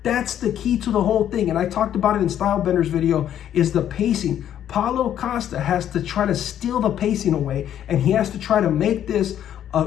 That's the key to the whole thing. And I talked about it in Stylebender's video, is the pacing. Paulo Costa has to try to steal the pacing away, and he has to try to make this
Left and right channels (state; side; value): quieter; right; 10.5 dB